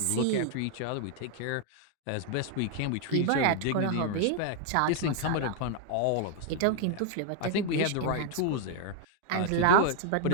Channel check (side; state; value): both; different; correlation 0.00